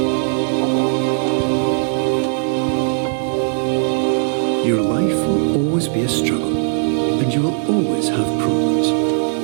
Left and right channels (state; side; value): silent; left; digital silence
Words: Your life will always be a struggle, and you will always have problems.